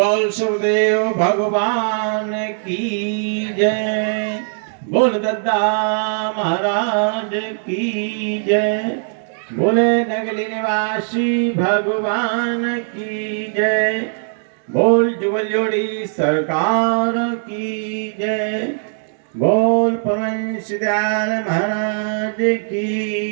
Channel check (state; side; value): silent; left; digital silence